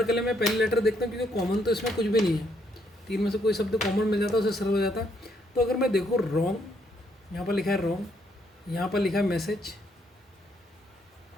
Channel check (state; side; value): normal; both; correlation 0.72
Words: के लिए मैं पहले लेटर देखता हूँ, क्योंकि कॉमन तो इसमें कुछ भी नहीं है। तीन में से कोई शब्द कॉमन मिल जाता है, उसे सरल हो जाता है। तो अगर मैं देखूँ रॉन्ग, यहाँ पर लिखा है रॉन्ग, यहाँ पर लिखा है मैसेज,